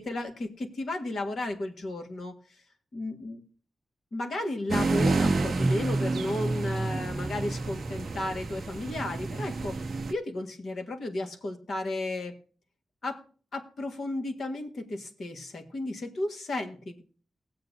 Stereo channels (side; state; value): both; normal; correlation 0.91